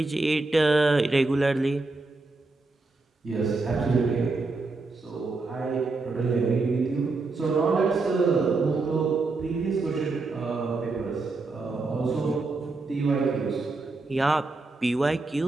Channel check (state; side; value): quieter; left; 3.6 dB